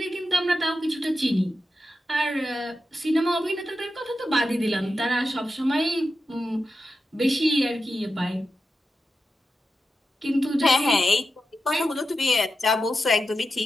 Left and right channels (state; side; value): normal; both; correlation 0.90